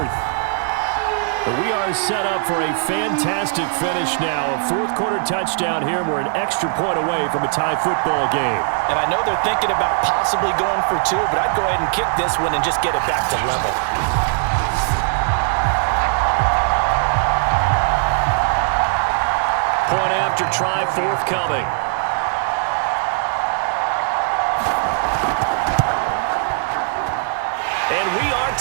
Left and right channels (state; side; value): silent; left; digital silence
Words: We are set up for a fantastic finish now. A 4th quarter touchdown here. We're an extra point away from a tie football game. And I know they're thinking about possibly going for 2, but I'd go ahead and kick this one and just get it back to level. Point after try forthcoming. And we are